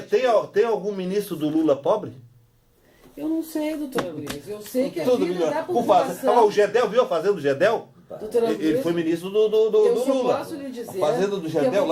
Tem algum ministro do Lula pobre? Eu não sei, doutora Luísa. Eu sei que a vida da população... O Gedel, viu a fazenda do Gedel? Ele foi ministro do Lula. Eu só posso lhe dizer a fazenda do Gedel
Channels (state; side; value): identical; both; correlation 1.00